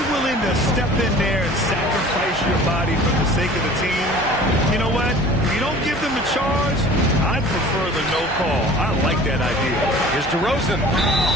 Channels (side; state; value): both; normal; correlation 0.45